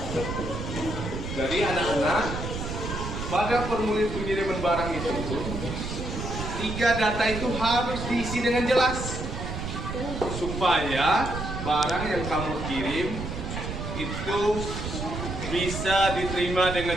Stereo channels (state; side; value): noise; right; rumble, 5 dB below the sound